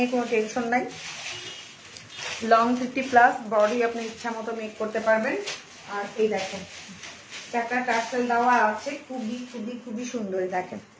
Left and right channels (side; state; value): both; identical; correlation 1.00